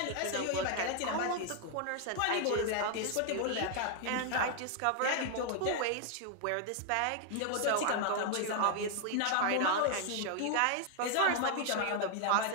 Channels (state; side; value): different; both; correlation 0.00